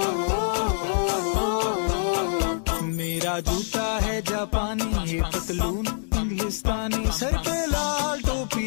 मेरा जूता है जापानी ये पतलून इंग्लिस्तानी सर पे लाल टोपी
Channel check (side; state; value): right; silent; digital silence